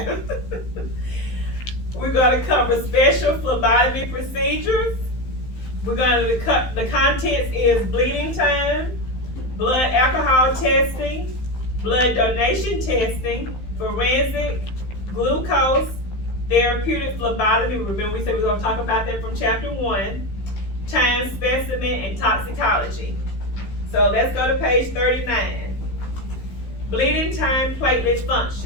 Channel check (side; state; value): right; late; 15 ms